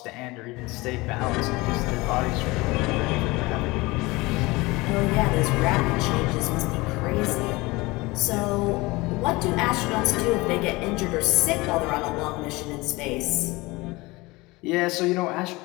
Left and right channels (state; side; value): quieter; right; 22.4 dB